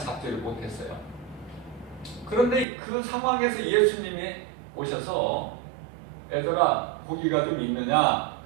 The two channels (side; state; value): left; drops out; at 2.7 s